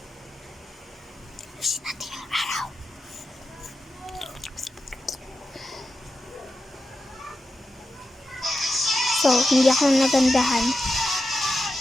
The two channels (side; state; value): both; normal; correlation 0.89